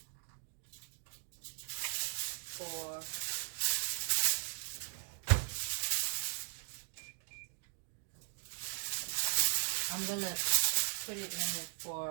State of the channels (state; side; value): silent; left; digital silence